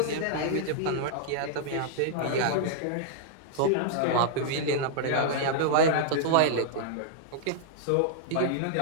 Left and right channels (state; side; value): different; both; correlation -0.01